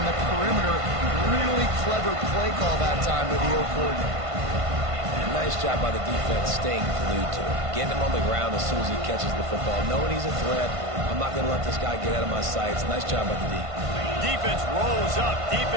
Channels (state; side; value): late; left; 1.5 ms